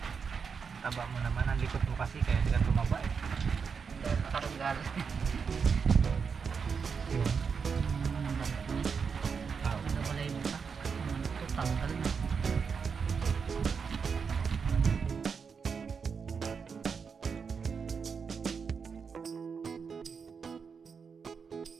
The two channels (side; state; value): left; quieter; 5.9 dB